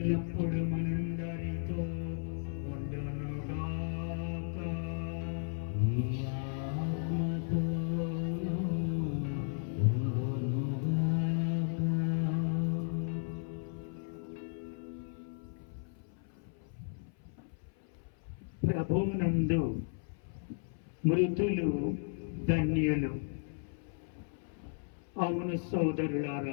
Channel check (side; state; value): right; silent; 55 dB below the other